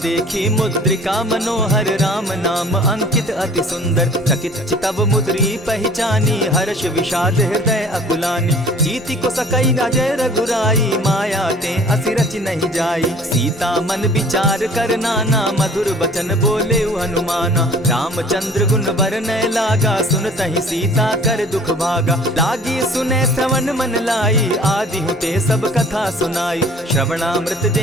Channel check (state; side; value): normal; both; correlation 0.50